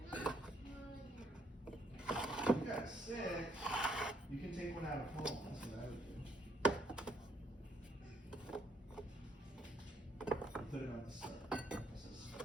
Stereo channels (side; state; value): both; normal; correlation 0.70